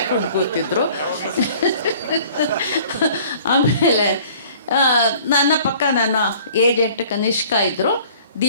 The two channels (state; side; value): inverted; both; correlation -0.51